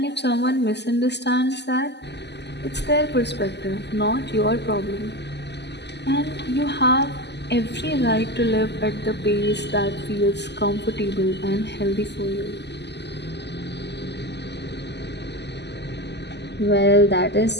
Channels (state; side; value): late; right; 0.50 ms